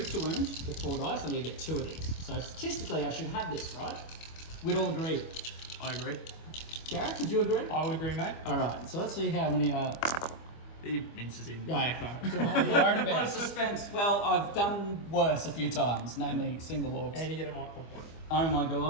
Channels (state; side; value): late; right; 25 ms